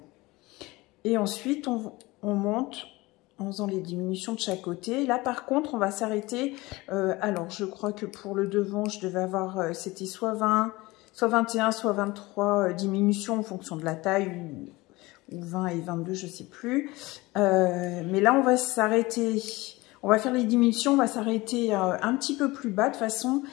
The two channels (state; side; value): quieter; right; 21.3 dB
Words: Et ensuite on monte en faisant les diminutions de chaque côté. Là par contre on va s'arrêter. Alors je crois que pour le devant je devais avoir, c'était soit 20, soit 21, soit 23 diminutions en fonction de la taille, ou 20 et 22, je ne sais plus. Mais là, on va s'arrêter, on va faire les diminutions, on va s'arrêter un petit peu plus bas de façon